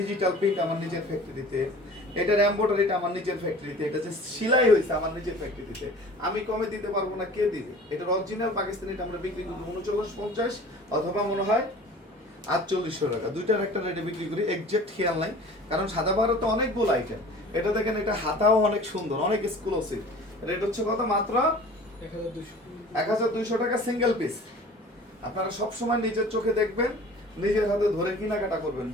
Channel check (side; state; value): both; normal; correlation 0.44